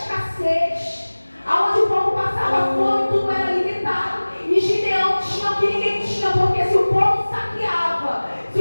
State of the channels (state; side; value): inverted; both; correlation -1.00